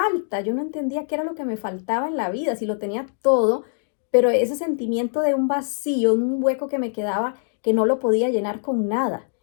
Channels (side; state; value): right; silent; digital silence